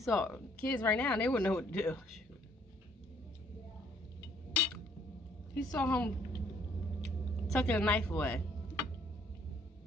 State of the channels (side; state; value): both; normal; correlation 0.64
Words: kids right now, they wouldn't know what to do. He saw him tucking a knife away